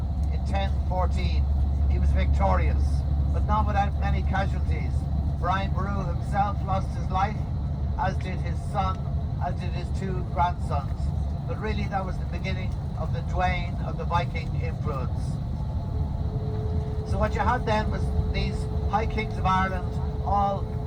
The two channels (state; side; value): identical; both; correlation 1.00